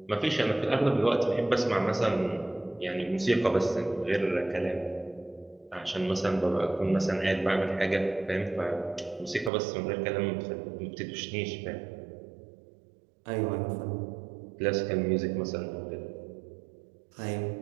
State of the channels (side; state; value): left; drops out; at 9.5 s